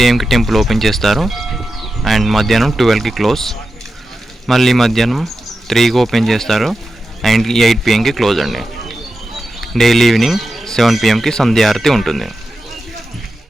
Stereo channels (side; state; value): both; normal; correlation 0.91